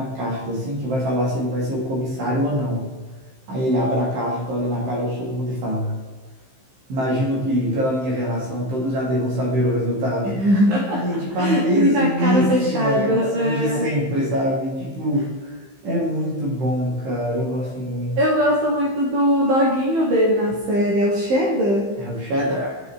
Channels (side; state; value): left; late; 15 ms